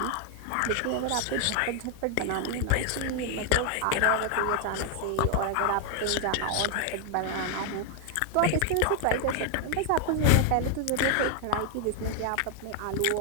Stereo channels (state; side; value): different; both; correlation 0.00